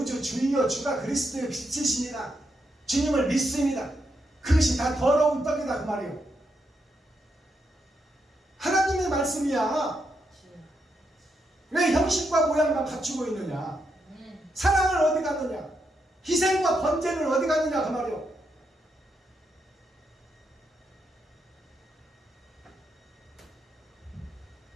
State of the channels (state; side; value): normal; both; correlation 0.81